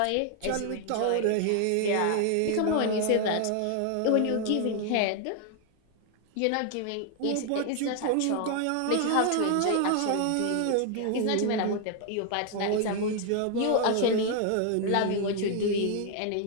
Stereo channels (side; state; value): both; different; correlation 0.00